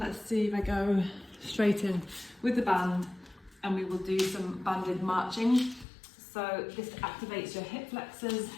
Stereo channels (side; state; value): right; drops out; at 5.9 s